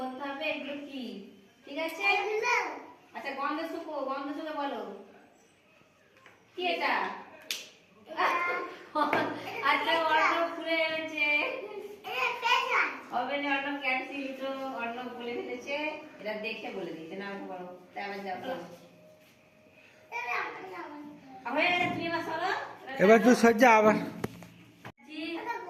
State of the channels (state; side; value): identical; both; correlation 1.00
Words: হবে এগুলো কি। ঠিক আছে? আচ্ছা গন্ধ শুকে বলো কি এটা। আচ্ছা অর্ণব খুলে এনেছে হবে না, অর্ণব ক্যান্সেল তো অর্ণব বলে ফেলেছে। এটা দেখে বলে দিচ্ছে না বলো, তাই আবার যাও বলো। হয়ে গেছে, তুমি এবার চলো। এবার তুই সজ্জা আবার